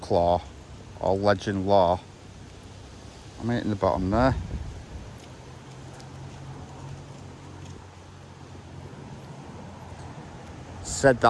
or legend lore, I'm hitting the bottom there. Said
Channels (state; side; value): identical; both; correlation 1.00